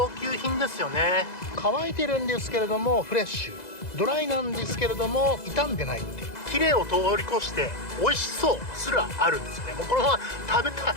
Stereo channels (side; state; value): right; late; 2.0 ms